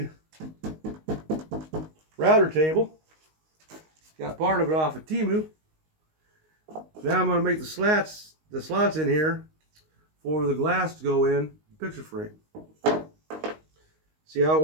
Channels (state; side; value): late; left; 19 ms